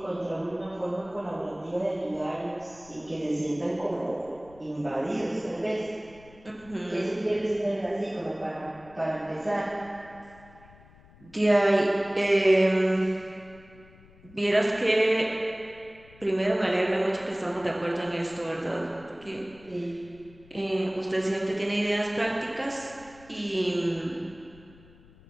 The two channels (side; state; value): left; noise; rumble, 24 dB below the sound